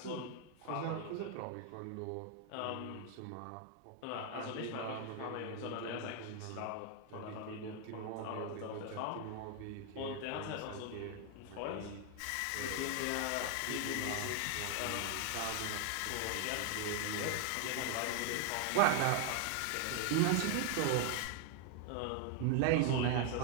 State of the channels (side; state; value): both; different; correlation 0.00